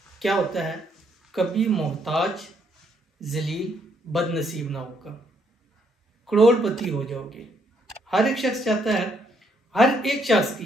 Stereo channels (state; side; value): normal; both; correlation 0.72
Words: क्या होता है, कभी मोहताज, जलील, बदनसीब ना होगा, करोड़पति हो जाओगे। हर एक शख्स चाहता है, हर एक शख्स